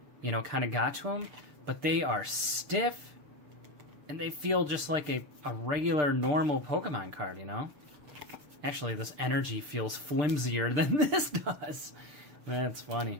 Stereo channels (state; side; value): late; left; 6.7 ms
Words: you know, kind of got to them, but they are stiff, and they feel just like a regular, normal Pokemon card, you know? Actually, this energy feels flimsier than this does. That's